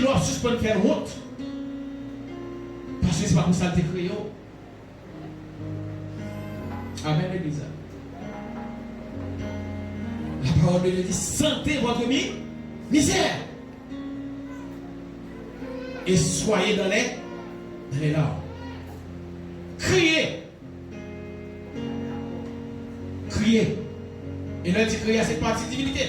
suspend de faire honte. Parce que ce n'est pas pour ça que tu créé. Amen, l'église. La parole de Dieu dit sentez votre misère. Et soyez dans les larmes. Criez. Criez. Et là, il dit que c'est partie divinité.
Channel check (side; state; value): both; identical; correlation 1.00